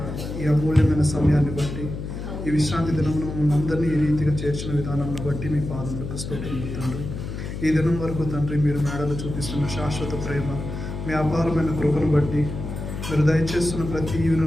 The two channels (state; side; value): noise; left; hum, 7 dB below the sound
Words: ఈ అమూల్యమైన సమయాన్ని బట్టి, ఈ విశ్రాంతి దినమును మమ్మల్ని అందరినీ ఈ రీతిగా చేర్చిన విధానాన్ని బట్టి మీ పాదములకు స్తోత్రములు తండ్రి. ఈ దినం వరకు తండ్రి మీరు మేడలు చూపిస్తున్న శాశ్వత ప్రేమ, మీ అపారమైన కృపను బట్టి, మీరు దయచేస్తున్న ప్రతి